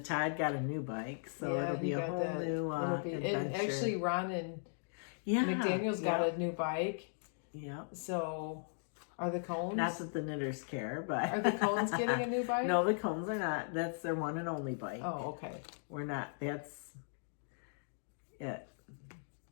got a new bike, so it'll be a whole new adventure. And actually, Ron and McDaniel's got a new bike. Yeah. So, are the Cones? Not that the knitters care, but are the Cones getting a new bike? No, the Cones are not. That's their one and only bike. Oh, okay. We're not. That's it.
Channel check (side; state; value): right; silent; digital silence